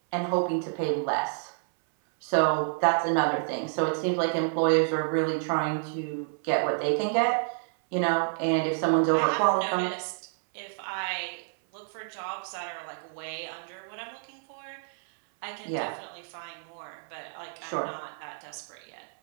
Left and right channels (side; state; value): left; silent; 59 dB below the other